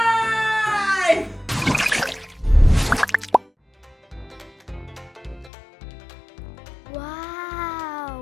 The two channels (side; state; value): right; drops out; at 5.5 s